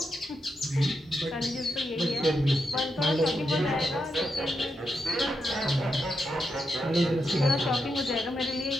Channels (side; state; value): both; normal; correlation 0.84